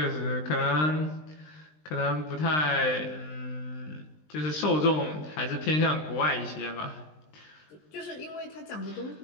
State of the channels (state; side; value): late; right; 20 ms